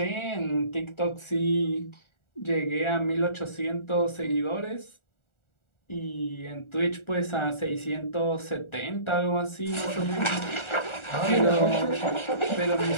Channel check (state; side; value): late; right; 1.4 ms